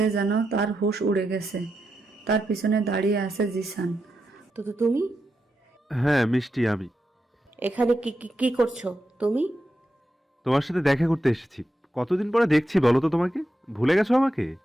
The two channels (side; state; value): both; normal; correlation 0.87